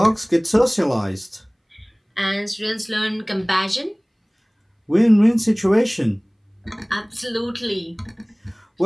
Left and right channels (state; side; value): identical; both; correlation 1.00